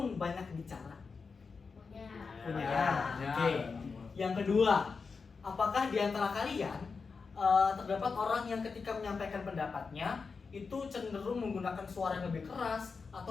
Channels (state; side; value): quieter; right; 4.9 dB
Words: banyak bicara? Punya. Punya. Ya. Oke. Yang kedua, apakah di antara kalian terdapat orang yang ketika menyampaikan pendapatnya itu cenderung menggunakan suara yang lebih keras